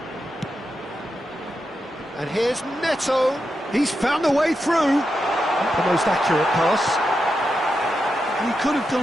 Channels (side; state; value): both; normal; correlation 0.87